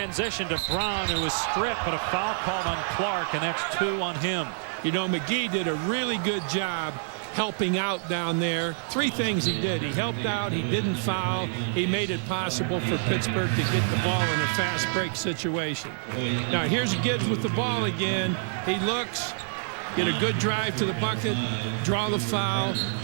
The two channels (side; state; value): left; silent; digital silence